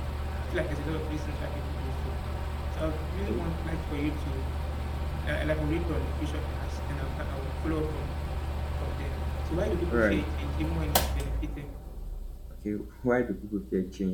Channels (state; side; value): identical; both; correlation 1.00